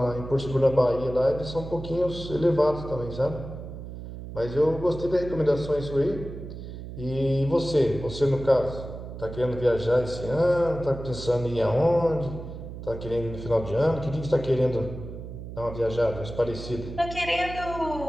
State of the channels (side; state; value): right; noise; hum, 10 dB below the sound